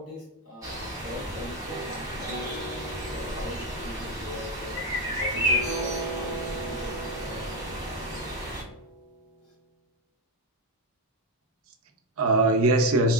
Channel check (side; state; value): both; normal; correlation 0.08